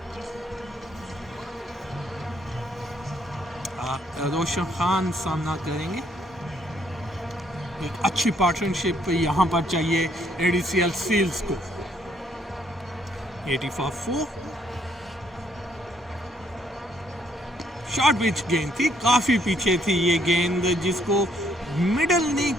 रोशन खान सामना करेंगे। एक अच्छी पार्टनरशिप यहाँ पर चाहिए एडीसीएल सील्स को। 84 शॉर्ट पिच गेंद थी, काफ़ी पीछे थी ये गेंद, जिसको मिडल नहीं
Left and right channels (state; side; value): normal; both; correlation 0.69